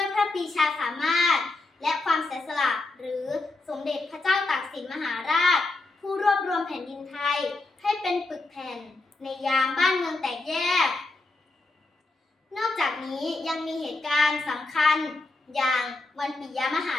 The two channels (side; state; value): right; quieter; 3.2 dB